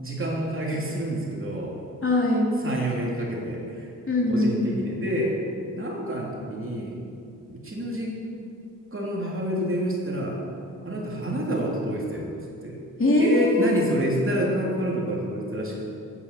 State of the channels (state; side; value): normal; both; correlation 0.45